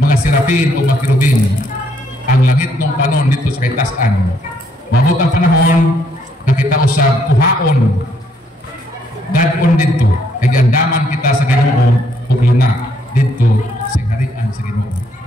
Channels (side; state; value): both; normal; correlation 0.70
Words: serapin o mga kirubin, ang langit ng panon dito sa kaitasan. Mabot ang panahon na kita usab kuhaon dadon dito, kay gandaman kita sa Ginoo ug luna dito sa harian sa Ginoo.